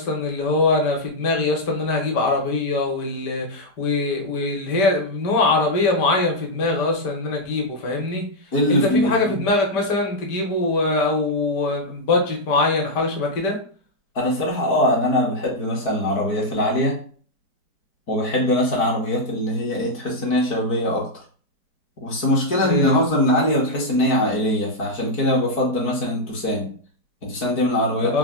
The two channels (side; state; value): right; late; 4.6 ms